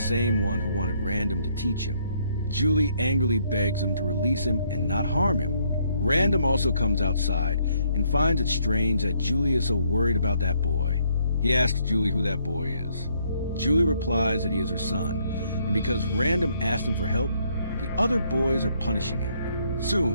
one who wanted Random to teach him. Julie angrily begs him to release him and not harm him. Random also comes outside and finds it strange that Julie is so worried about that boy. He asks Julie who that boy is. Julie replies that he is her son, and because Random asked him for help, the other boys are punishing him.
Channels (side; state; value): both; inverted; correlation -0.69